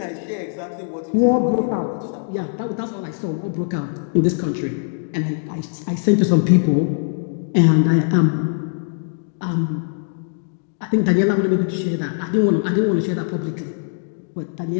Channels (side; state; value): right; silent; digital silence